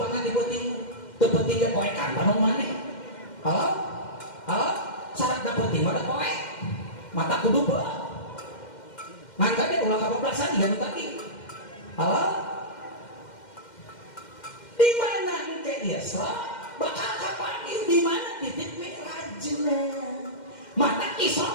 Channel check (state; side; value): late; right; 2.1 ms